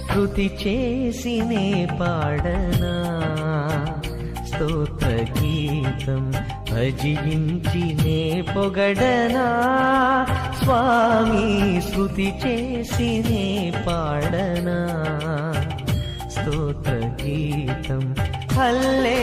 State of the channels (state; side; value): identical; both; correlation 1.00